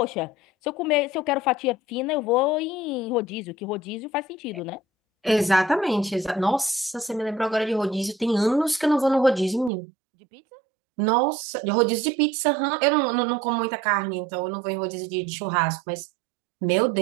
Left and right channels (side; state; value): left; drops out; at 9.7 s